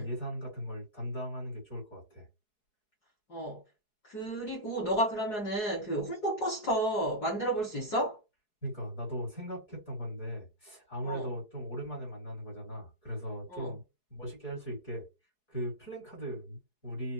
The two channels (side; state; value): right; late; 4.7 ms